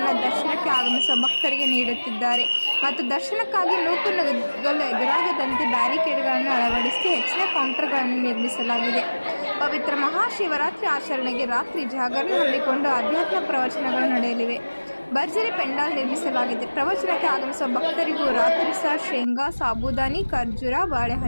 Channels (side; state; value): both; inverted; correlation -1.00